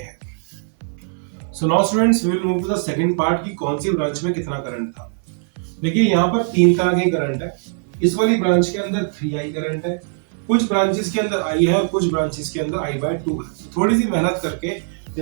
So now students, we will move to the second part की कौन सी ब्रांच में कितना करंट था। देखिए, यहाँ पर 3 तरह के करंट है। इस वाली ब्रांच के अंदर 3i करंट है, कुछ ब्रांचेस के अंदर i है और कुछ ब्रांचेस के अंदर i बाय 2 है। थोड़ी सी मेहनत करके,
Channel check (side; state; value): left; silent; 65 dB below the other